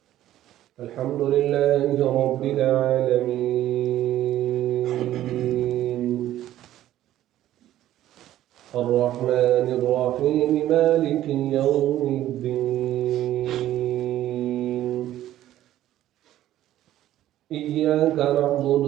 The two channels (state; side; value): quieter; left; 13.3 dB